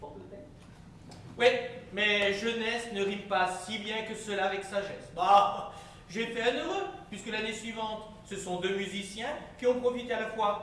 tête. Oui, mais jeunesse ne rime pas si bien que cela avec sagesse. Bah, j'ai fait un heureux, puisque l'année suivante, ce sont 2 musiciens qui ont profité à la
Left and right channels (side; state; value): both; identical; correlation 1.00